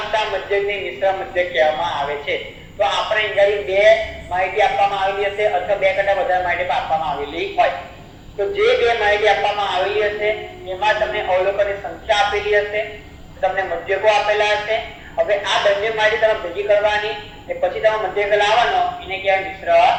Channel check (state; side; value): identical; both; correlation 1.00